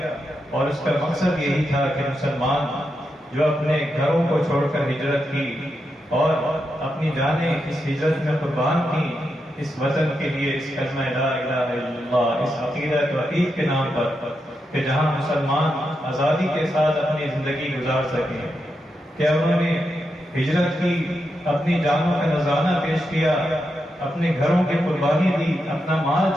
اور اس کا مقصد یہی تھا کہ مسلمان جو اپنے گھروں کو چھوڑ کر ہجرت کی اور اپنی جانیں اس ہجرت میں قربان کی اس وطن کے لیے، اس کلمہ لا الہ الا اللہ، اس عقیدہ توحید کے نام پر، کہ جہاں مسلمان آزادی کے ساتھ اپنی زندگی گزار سکیں. کہ انہوں نے ہجرت کی، اپنی جانوں کا نذرانہ پیش کیا، اپنے گھروں کی قربانی دی، اپنا مال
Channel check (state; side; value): normal; both; correlation 0.85